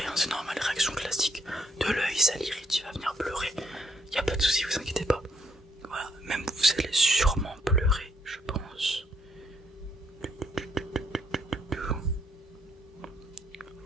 hein, c'est normal, réaction classique de l'œil, ça l'irrite, il va venir pleurer. Il n'y a pas de souci, vous inquiétez pas. Voilà, même vous allez sûrement pleurer, je pense.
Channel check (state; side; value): normal; both; correlation 0.71